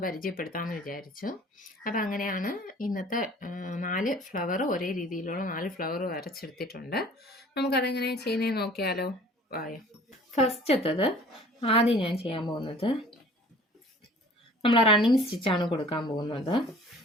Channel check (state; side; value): normal; both; correlation 0.49